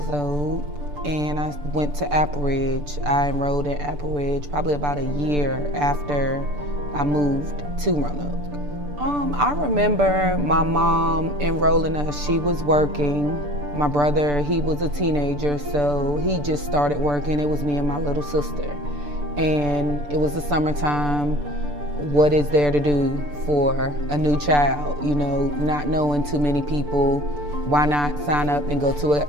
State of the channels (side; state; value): left; late; 6.8 ms